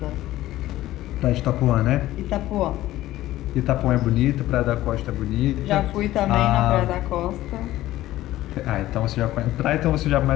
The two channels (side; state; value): right; quieter; 15.3 dB